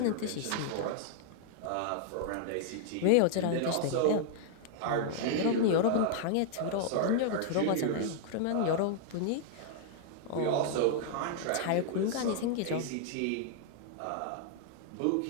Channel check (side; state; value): both; different; correlation 0.00